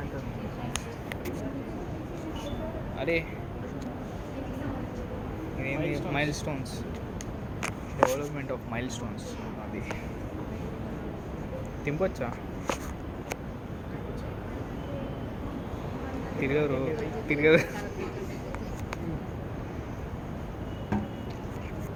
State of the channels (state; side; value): identical; both; correlation 1.00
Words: అరే ఇదేంటి mile stones, development of mile stones. అది తింపొచ్చా? తిరగరు తిరగదు.